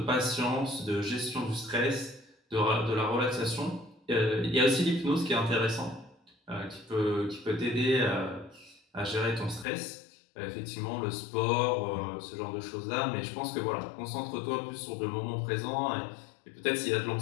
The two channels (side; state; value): right; drops out; at 9.7 s